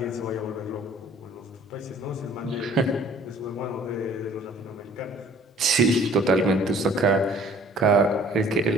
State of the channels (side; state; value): both; normal; correlation 0.54